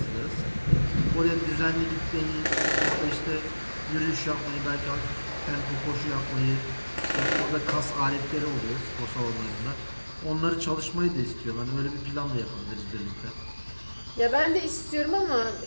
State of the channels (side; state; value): both; inverted; correlation -1.00